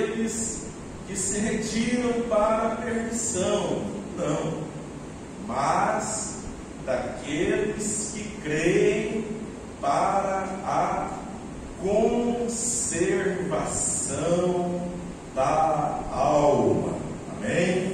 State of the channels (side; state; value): both; identical; correlation 1.00